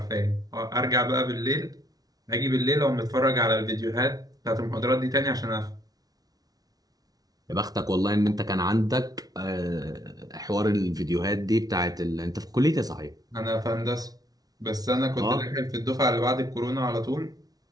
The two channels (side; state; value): left; late; 0.18 ms